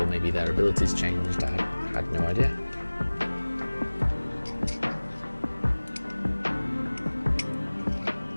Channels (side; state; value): both; inverted; correlation -1.00